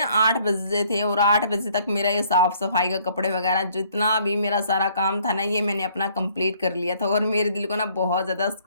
बजे थे, और 8 बजे तक मेरा ये साफ सफाई का कपड़े वगैरह जितना भी मेरा सारा काम था ना, ये मैंने अपना कंप्लीट कर लिया था। और मेरे दिल को ना बहुत ज़्यादा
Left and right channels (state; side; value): inverted; both; correlation -0.62